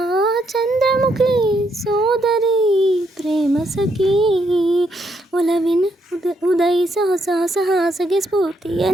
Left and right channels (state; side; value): normal; both; correlation 0.76